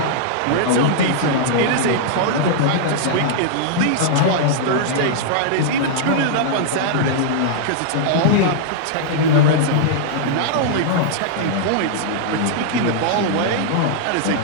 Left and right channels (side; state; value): both; different; correlation -0.01